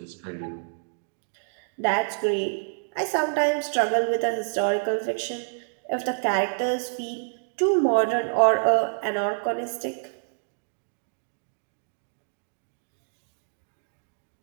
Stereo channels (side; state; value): left; silent; digital silence